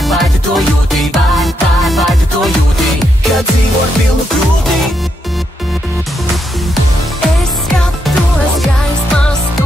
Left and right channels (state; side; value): normal; both; correlation 0.80